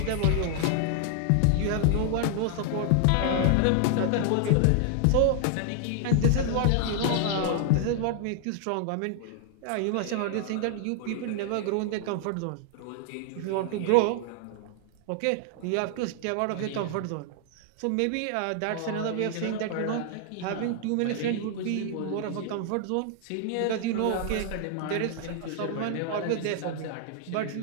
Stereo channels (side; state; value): both; different; correlation 0.00